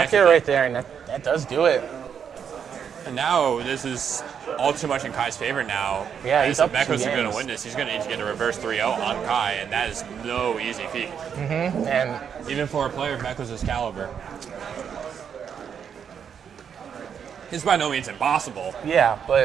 connect air with right there, and that does do it. And now this is all too much in Kai's favor now. Yeah, he's If up 2 Mekos is going games. to win this, he's going to need to get a reverse 3-0 on Kai, and that is no easy feat. And Even for a player of Mekos' caliber. It's by no means impossible. yeah,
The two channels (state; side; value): quieter; left; 7.6 dB